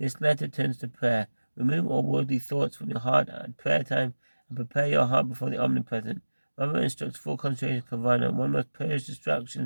letter turns to prayer. Remove all worldly thoughts from your heart at prayer time and prepare your heart before the omnipresent. Rambam instructs full concentration kavana. One must purge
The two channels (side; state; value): both; inverted; correlation -1.00